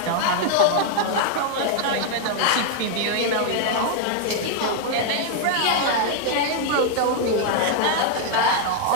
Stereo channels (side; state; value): both; different; correlation 0.00